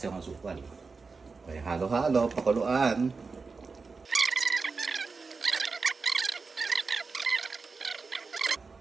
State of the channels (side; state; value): left; quieter; 4.5 dB